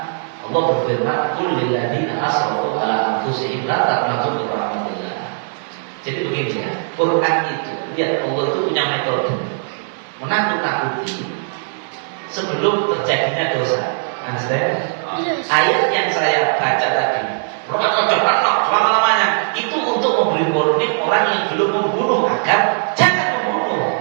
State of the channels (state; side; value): silent; left; 67 dB below the other